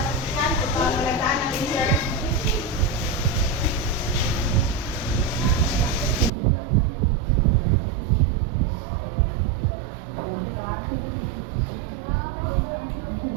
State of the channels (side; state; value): left; drops out; at 6.3 s